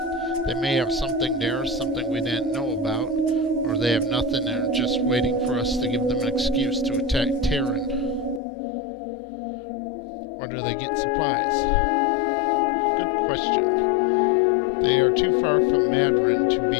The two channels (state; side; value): drops out; right; at 8.4 s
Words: They may have something there, something we didn't know about, or they have nothing and are just waiting for us to give them an excuse to attack Terran. Where do they get supplies? Good question. They are too far from Madron to